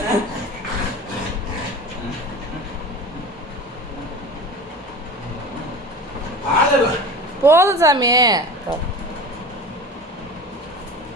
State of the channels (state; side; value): normal; both; correlation 0.34